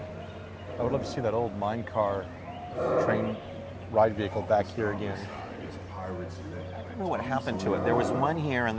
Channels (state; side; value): identical; both; correlation 1.00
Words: I would love to see that old mine car train ride vehicle back here again. I don't know what happened to it. There was one here, and